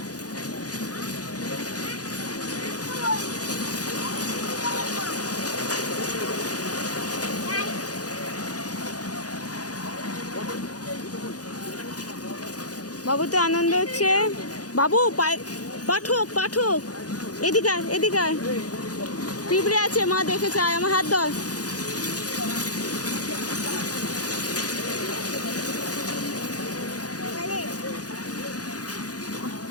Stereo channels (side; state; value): right; late; 0.68 ms